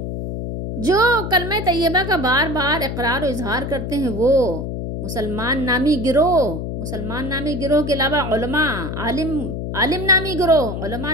جو کلمہ طیبہ کا بار بار اقرار و اظہار کرتے ہیں، وہ مسلمان نامی گروہ کے علاوہ علماء، عالم نامی گروہ، علماء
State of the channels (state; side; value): noise; left; hum, 5 dB below the sound